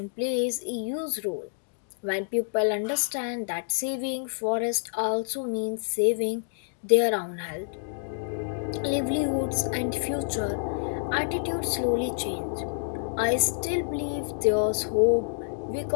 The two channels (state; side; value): silent; right; digital silence